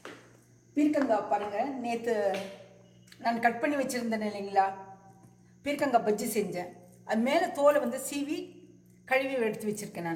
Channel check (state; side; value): identical; both; correlation 1.00